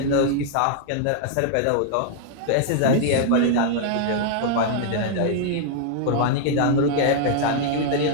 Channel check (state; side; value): different; both; correlation -0.01